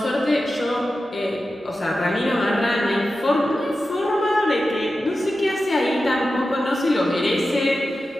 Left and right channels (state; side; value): normal; both; correlation 0.92